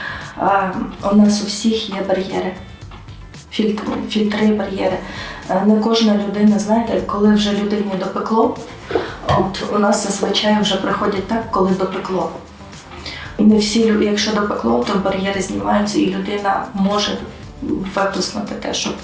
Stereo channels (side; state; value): both; identical; correlation 1.00